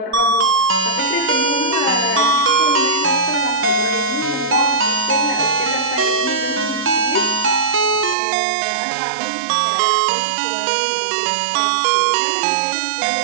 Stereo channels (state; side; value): drops out; left; at 8.2 s